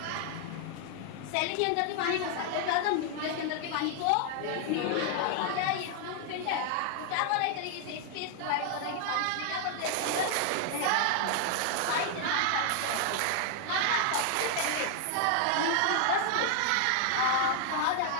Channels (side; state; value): both; different; correlation 0.00